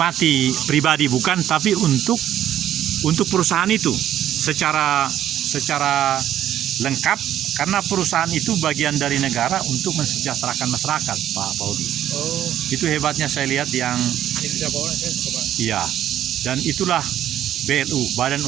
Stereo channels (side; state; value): left; quieter; 11.4 dB